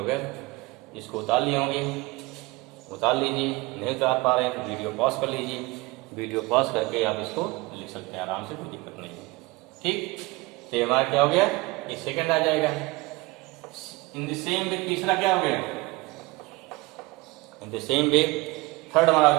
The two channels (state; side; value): quieter; left; 23.0 dB